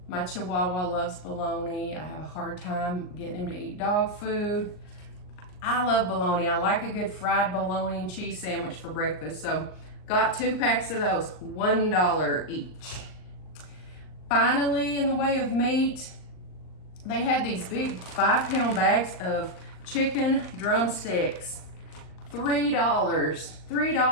My Chihuahua loves bologna. I have a hard time getting him to eat dog food. I love bologna. I like a good fried bologna and cheese sandwich for breakfast. So got 2 packs of those, $1 each. Finally, in the way of meat, they had these big 5-pound bags of chicken drumsticks.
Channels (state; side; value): late; right; 39 ms